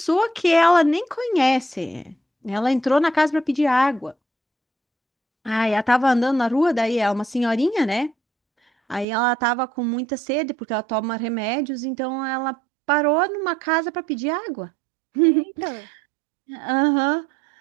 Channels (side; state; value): left; drops out; at 9.1 s